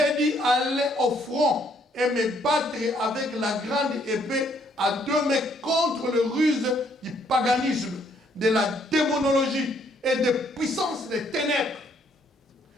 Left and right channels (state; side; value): normal; both; correlation 0.67